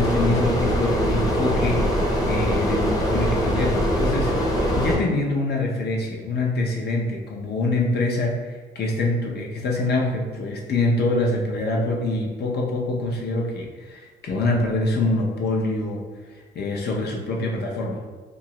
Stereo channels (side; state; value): both; normal; correlation 0.57